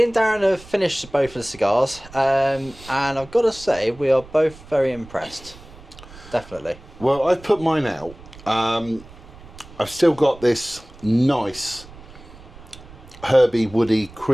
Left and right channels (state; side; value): noise; right; rumble, 20 dB below the sound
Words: and Darren have finished both of the cigars, and I've got to say, we are both very impressed. Definitely. Well, I've put mine out. I've still got this nice, herby, woody,